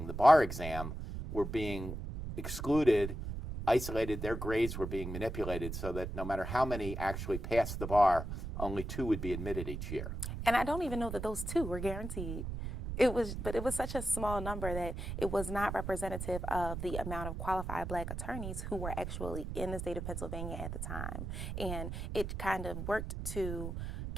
the bar exam were being excluded, isolated, their grades were being manipulated so that no matter how many actually passed the bar, only 2 would be admitted each year. And I don't even know that those 2 were guaranteed. But it was such a small number that it was not representative of the amount of qualified Black attorneys who were actually in the state of Pennsylvania at the time. And it kind of worked to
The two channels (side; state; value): right; noise; rumble, 5 dB below the sound